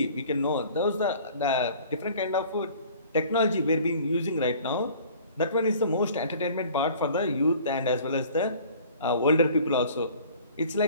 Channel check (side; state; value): both; inverted; correlation -0.49